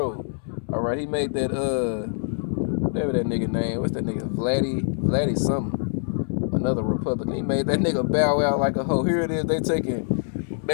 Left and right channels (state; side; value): silent; right; 61 dB below the other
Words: All right, he made that whatever that nigga name. What's that nigga? Vladdy something. Another Republican. He made that nigga bow out like a hoe. Here it is. They